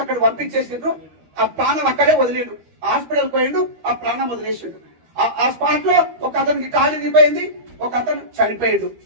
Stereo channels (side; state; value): left; late; 13 ms